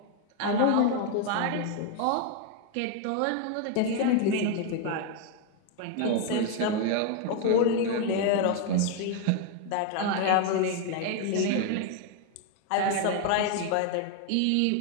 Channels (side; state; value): both; different; correlation 0.01